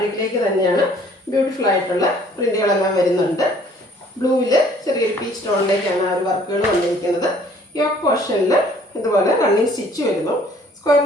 തന്നെയാണ്. ബ്യൂട്ടിഫുൾ ആയിട്ടുള്ള പ്രിന്റുകളെല്ലാം വരുന്നുണ്ട്. ബ്ലൂവിൽ ചെറിയൊരു പീച്ച് ടോണിലേക്കാണ് ആ ഒരു വർക്കുകൾ വന്നിരിക്കുന്നത്. യോക്ക് പോർഷനിൽ ഇതുപോലെ റണ്ണിങ് സ്റ്റിച്ച് വരുന്നു. സ്ക്വയർ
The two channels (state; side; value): normal; both; correlation 0.57